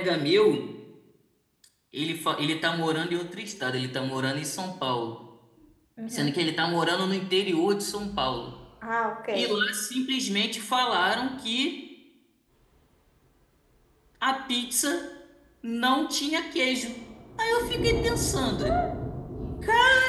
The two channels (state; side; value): identical; both; correlation 1.00